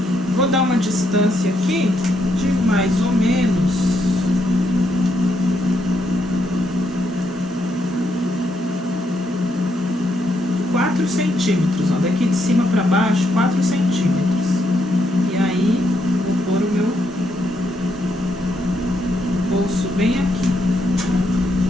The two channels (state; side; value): normal; both; correlation 0.77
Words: Vou dar uma distância aqui de mais ou menos 4 centímetros, ó, daqui de cima para baixo, 4 centímetros. E aí, vou pôr o meu bolso bem aqui,